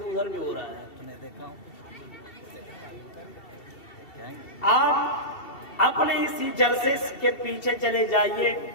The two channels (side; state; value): right; late; 2.7 ms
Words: بھی ہو رہا ہے، آپ اپنے اسی جلسے کے پیچھے چلے جائیے،